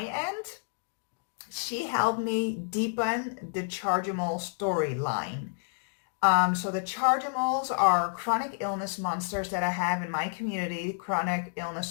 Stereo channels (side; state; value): right; silent; digital silence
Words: end? She helped me deepen the Chargimals storyline. So the Chargimals are chronic illness monsters that I have in my community, chronic